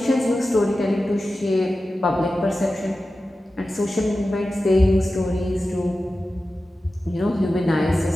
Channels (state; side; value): normal; both; correlation 0.94